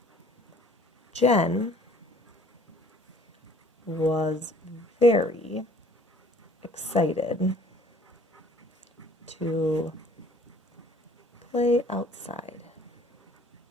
Jen was very excited to play outside.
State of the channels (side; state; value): both; normal; correlation 0.54